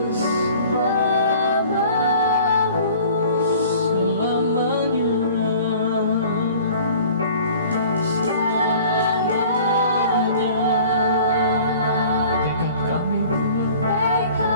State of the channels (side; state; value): both; inverted; correlation -0.48